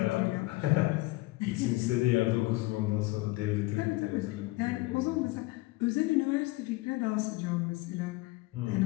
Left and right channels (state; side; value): quieter; right; 21.2 dB